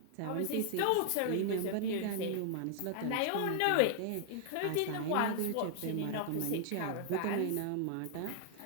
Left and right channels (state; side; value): different; both; correlation 0.00